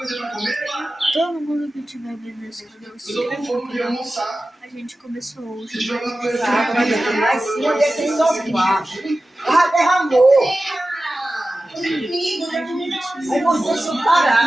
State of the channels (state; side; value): normal; both; correlation 0.95